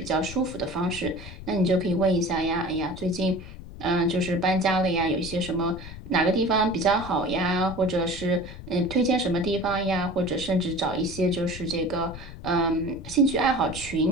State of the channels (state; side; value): noise; left; rumble, 13 dB below the sound